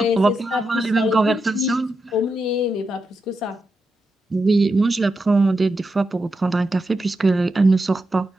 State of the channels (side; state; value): both; normal; correlation 0.87